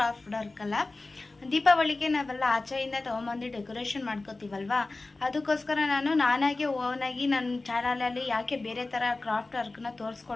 ವರ್ಕ್ ಅಲ್ಲ, ದೀಪಾವಳಿಗೆ ನಾವೆಲ್ಲ ಆಚೆಯಿಂದ ತೊಗೊಂಬಂದು ಡೆಕೋರೇಷನ್ ಮಾಡ್ಕೋತೀವಲ್ವಾ, ಅದಕ್ಕೋಸ್ಕರ ನಾನಾಗೆ ಓನಾಗಿ ನನ್ನ ಚಾನಲಲ್ಲಿ ಯಾಕೆ ಬೇರೆ ಥರ ಕ್ರಾಫ್ಟ್ ವರ್ಕ್ನ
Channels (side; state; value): right; quieter; 3.3 dB